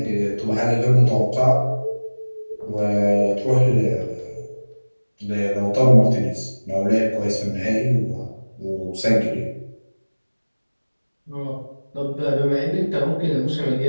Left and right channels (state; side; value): inverted; both; correlation -1.00